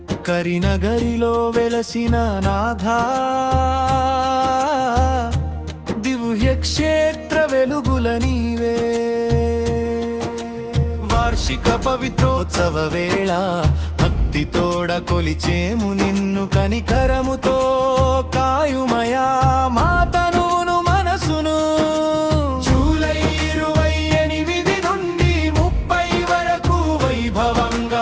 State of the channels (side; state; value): both; identical; correlation 1.00